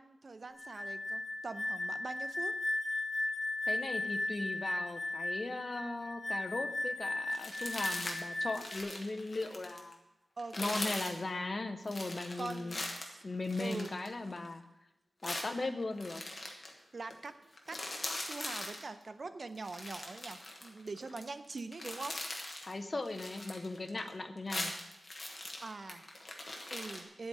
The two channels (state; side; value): normal; both; correlation 0.95